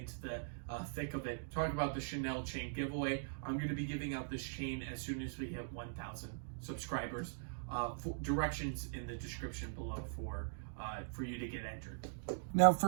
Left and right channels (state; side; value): silent; left; digital silence